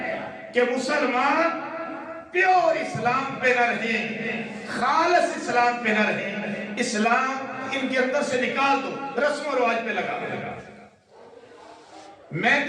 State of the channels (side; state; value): both; identical; correlation 1.00